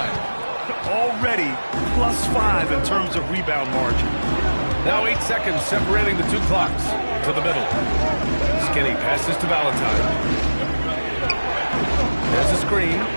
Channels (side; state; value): both; inverted; correlation -1.00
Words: Already +5 in terms of rebound margin. Now 8 seconds separating the two clocks. To the middle. Skinny passes to Valentine. There's a screen.